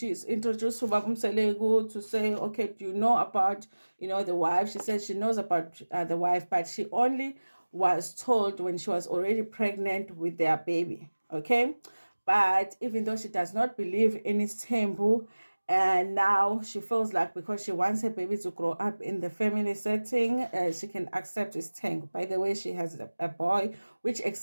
introduced to Babumselegu to say, okay, do you know about, the wife? She said she knows about the wife, but she only was told when she was already pregnant with their baby. Okay. But even though she does not believe in Isthembu, and now she feels like because she wants her baby to grow up in the family setting, she can accept his tank. By the way, she has a boy, which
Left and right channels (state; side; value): inverted; both; correlation -1.00